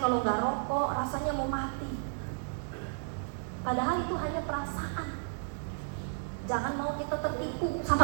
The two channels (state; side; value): silent; left; digital silence